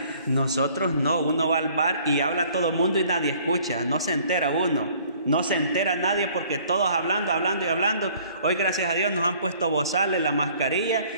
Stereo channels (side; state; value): both; inverted; correlation -0.56